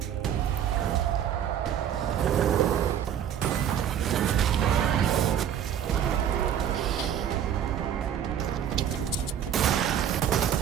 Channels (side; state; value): left; quieter; 9.5 dB